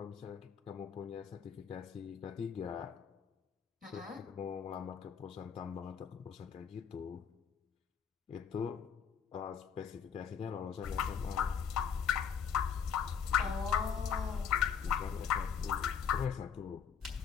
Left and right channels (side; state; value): right; quieter; 7.2 dB